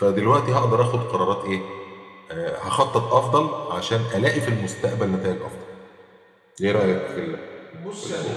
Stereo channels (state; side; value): identical; both; correlation 1.00